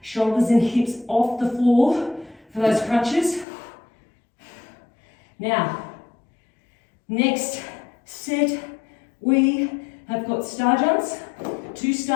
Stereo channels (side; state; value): right; drops out; at 3.5 s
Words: Shoulders and hips off the floor for those crunches. Now, next set, we have got star jumps, 2